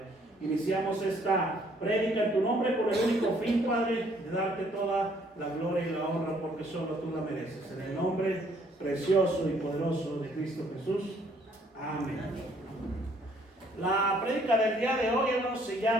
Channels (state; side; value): normal; both; correlation 0.64